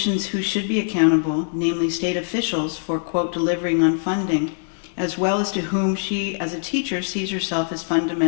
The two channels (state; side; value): silent; right; digital silence